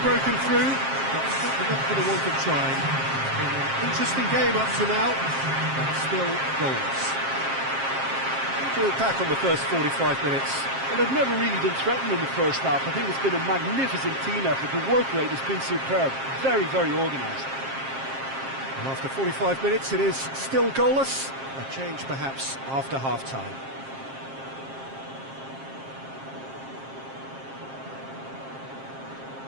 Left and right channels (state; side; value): late; left; 7.5 ms